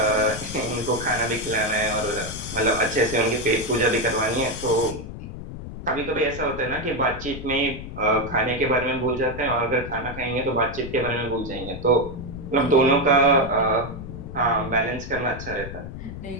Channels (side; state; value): left; noise; rumble, 10 dB below the sound